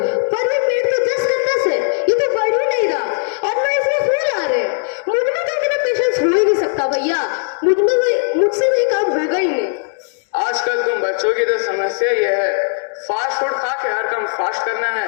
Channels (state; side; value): silent; right; digital silence